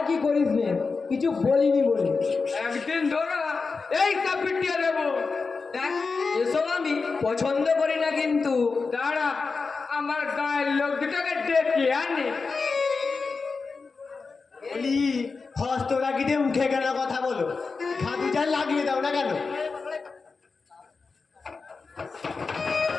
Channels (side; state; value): right; quieter; 4.5 dB